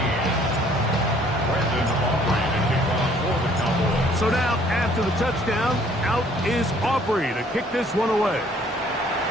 Brandon Aubrey to kick off for the Cowboys. So now, after the touchdown, out is Aubrey to kick this one away.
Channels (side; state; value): both; normal; correlation 0.59